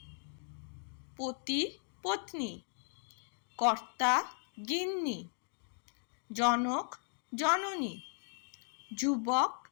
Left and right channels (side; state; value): right; silent; 53 dB below the other